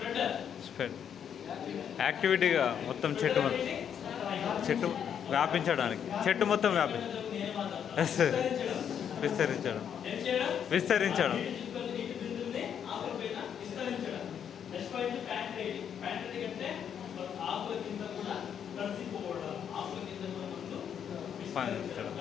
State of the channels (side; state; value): right; quieter; 8.4 dB